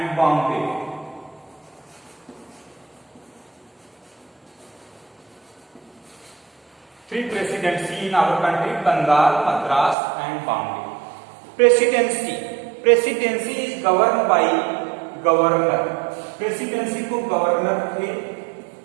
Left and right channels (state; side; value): drops out; left; at 10.0 s